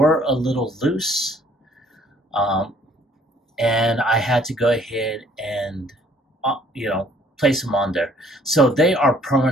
a little loose, um, and I had to go ahead and place them on there. So they are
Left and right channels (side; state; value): both; normal; correlation 0.60